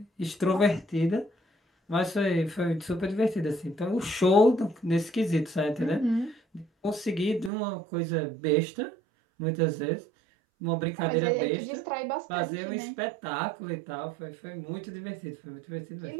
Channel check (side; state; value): left; drops out; at 7.5 s